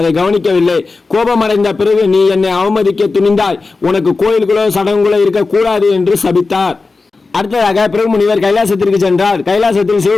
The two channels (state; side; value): quieter; right; 4.0 dB